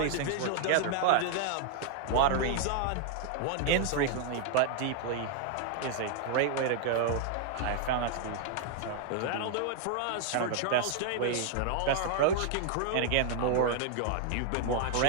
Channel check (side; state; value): both; different; correlation 0.00